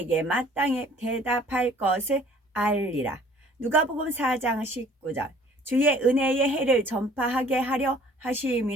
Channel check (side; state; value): both; normal; correlation 0.53